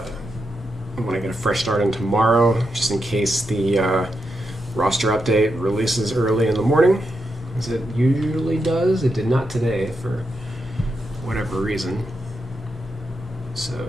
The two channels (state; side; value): normal; both; correlation 0.85